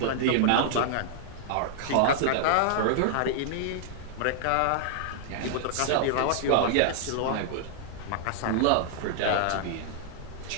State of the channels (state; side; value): different; both; correlation -0.01